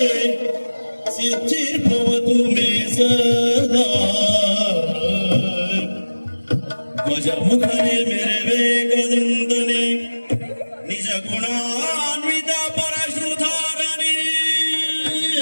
सिद्धिर्भवतु मे सदा. गजमुखने मेरे वेगदन्तने निज गुणान्वित परश्रुधारणे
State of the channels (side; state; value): both; inverted; correlation -1.00